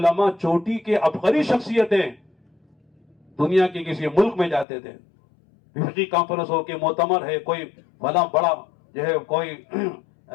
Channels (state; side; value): drops out; right; at 4.7 s